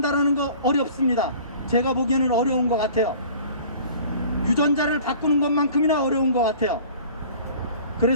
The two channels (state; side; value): inverted; both; correlation -0.46